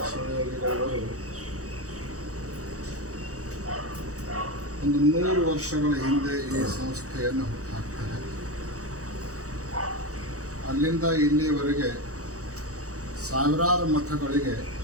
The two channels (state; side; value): late; left; 0.65 ms